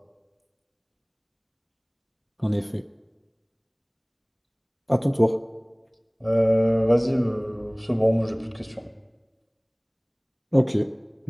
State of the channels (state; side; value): identical; both; correlation 1.00